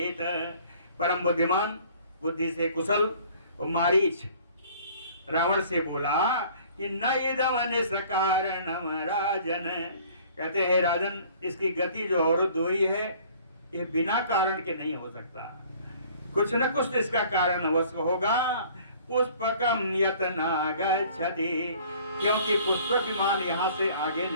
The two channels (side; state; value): both; inverted; correlation -0.53